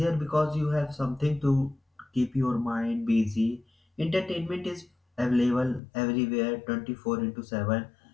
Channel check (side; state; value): right; drops out; at 5.8 s